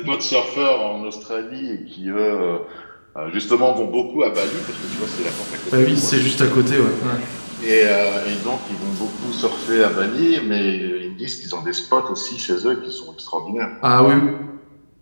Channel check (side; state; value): both; inverted; correlation -1.00